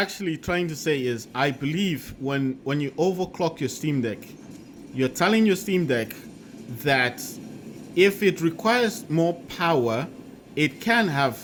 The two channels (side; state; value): both; identical; correlation 1.00